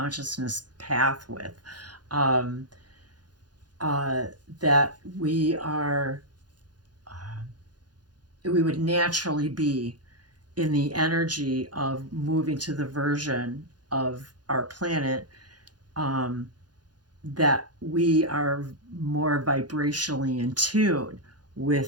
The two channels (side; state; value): left; late; 0.69 ms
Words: path with, um, that we would naturally be in the energy of moving to the version of our planet, um, that we are more vibrationally in tune